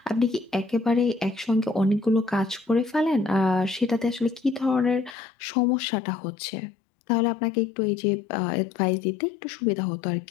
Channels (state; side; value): drops out; right; at 5.2 s